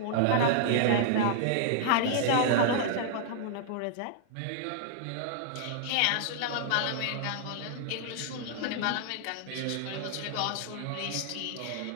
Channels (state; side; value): different; both; correlation -0.01